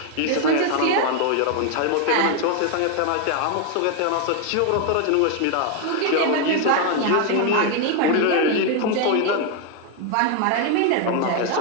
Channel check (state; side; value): different; both; correlation 0.01